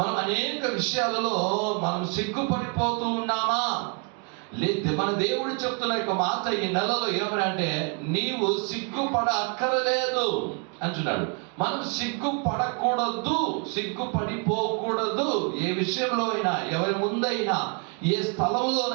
మనం అనేక విషయాలలో మనం సిగ్గుపడిపోతూ ఉన్నామా? లేదు. మన దేవుడు చెప్తున్న యొక్క మాట ఈ నెలలో ఏమనంటే నీవు సిగ్గుపడ అక్కరలేదు అంటున్నాడు. మనం సిగ్గుపడకూడదు, సిగ్గుపడిపోకూడదు. ఏ విషయంలో అయినా, ఎవరి ముందైనా, ఏ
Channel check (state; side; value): quieter; left; 35.3 dB